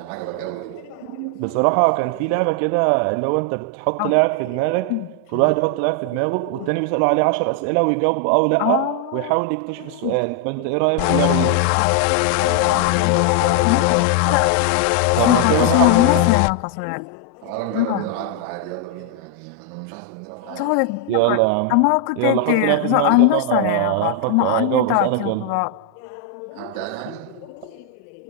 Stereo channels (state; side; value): different; both; correlation 0.00